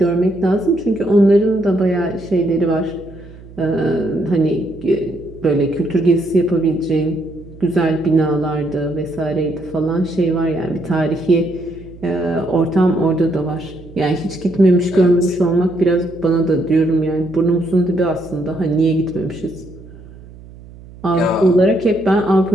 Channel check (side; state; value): right; noise; hum, 19 dB below the sound